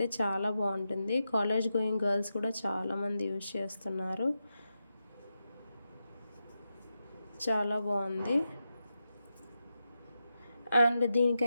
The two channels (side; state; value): both; inverted; correlation -0.88